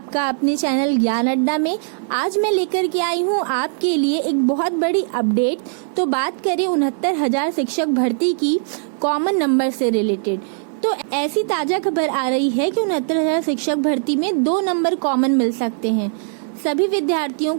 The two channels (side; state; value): left; silent; digital silence